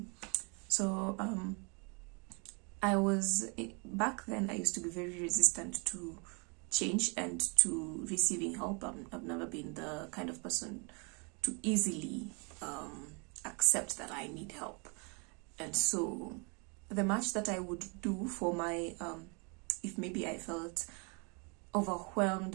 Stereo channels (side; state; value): left; quieter; 33.6 dB